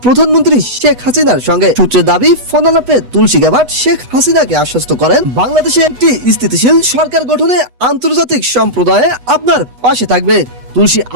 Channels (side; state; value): left; late; 8.1 ms